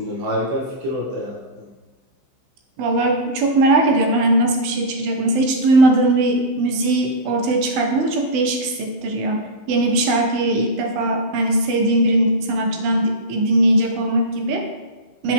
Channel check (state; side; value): late; left; 15 ms